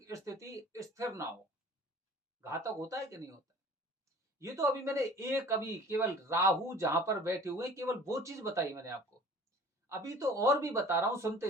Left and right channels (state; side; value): normal; both; correlation 0.46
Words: स्थिति स्थिर ना हो। घातक होता है कि नहीं होता है? ये तो अभी मैंने अभी केवल राहु जहां पर बैठे हुए, केवल वो चीज बताई मैंने आपको। अभी तो और भी बता रहा हूं,